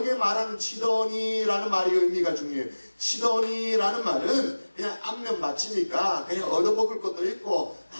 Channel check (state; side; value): inverted; both; correlation -1.00